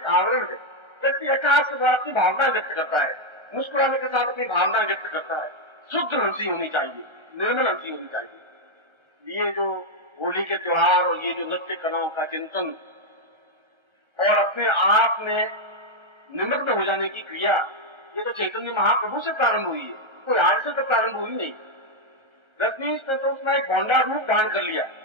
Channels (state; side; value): late; left; 1.3 ms